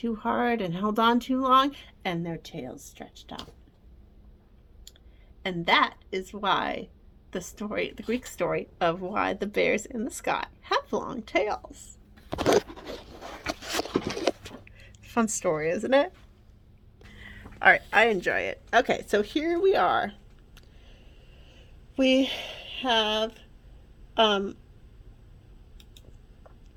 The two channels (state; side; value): identical; both; correlation 1.00